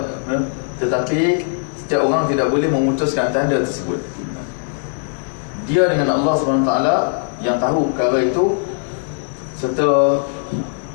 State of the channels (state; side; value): silent; right; digital silence